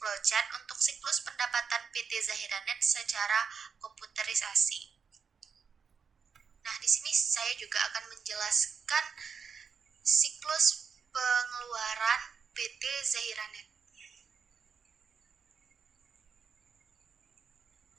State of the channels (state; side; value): quieter; left; 6.1 dB